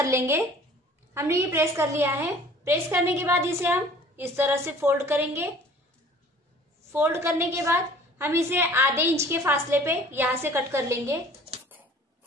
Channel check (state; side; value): normal; both; correlation 0.50